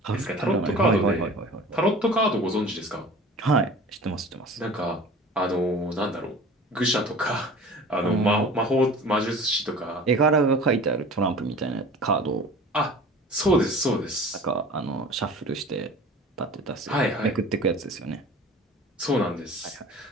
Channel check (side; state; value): both; normal; correlation 0.41